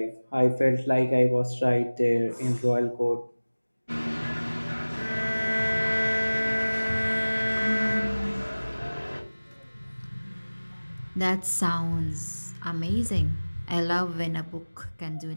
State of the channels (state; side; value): inverted; both; correlation -1.00